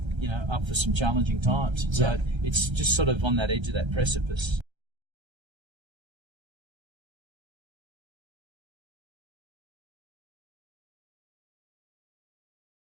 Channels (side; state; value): left; late; 1.3 ms